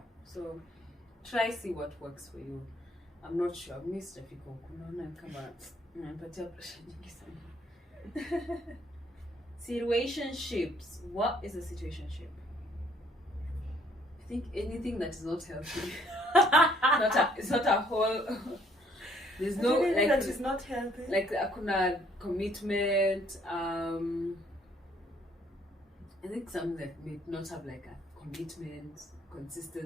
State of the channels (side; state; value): both; normal; correlation 0.64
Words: So try see what works for you. I'm not sure. Mr. Fiko, situationships. What is a situationship? I think anything that is not healthy. It's not a whole. There's no like that is not healthy. Like akuna commitment. I think something that may not have like a commitment,